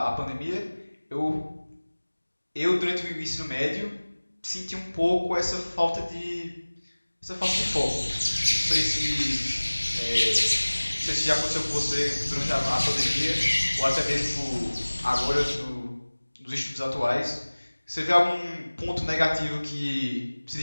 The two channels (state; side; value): inverted; both; correlation -1.00